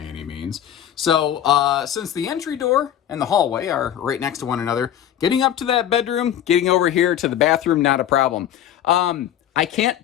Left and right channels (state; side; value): quieter; right; 10.7 dB